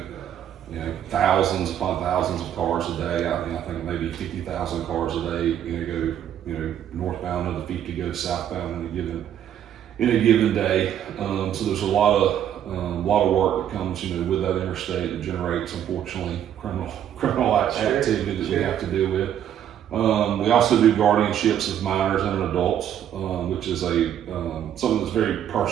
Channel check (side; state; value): left; quieter; 10.1 dB